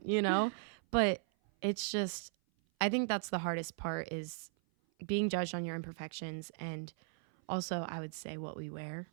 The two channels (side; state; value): left; silent; 53 dB below the other